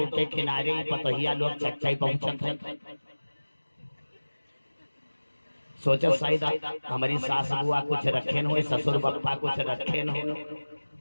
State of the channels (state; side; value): inverted; both; correlation -1.00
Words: किनारे ही पतोहिया लोग चक्चाई पहुंचत है। सोचा शायद हमारी सास बुआ कुछ रखे न हो, ससुर बप्पा कुछ रखे न हो,